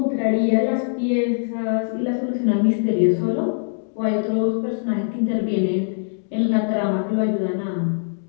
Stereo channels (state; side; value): silent; right; digital silence